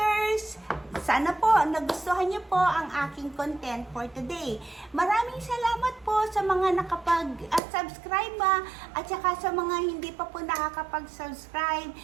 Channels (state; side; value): drops out; left; at 7.6 s